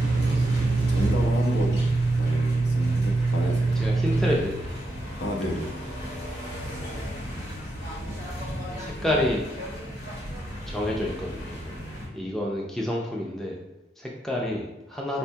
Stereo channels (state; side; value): normal; both; correlation 0.83